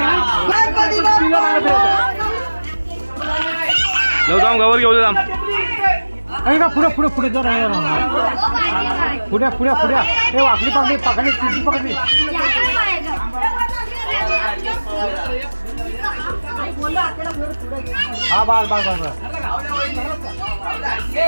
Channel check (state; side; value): inverted; both; correlation -1.00